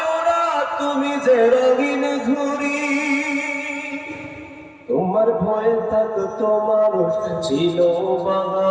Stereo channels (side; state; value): both; identical; correlation 1.00